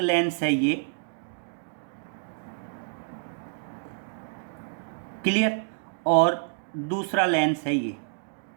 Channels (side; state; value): left; silent; digital silence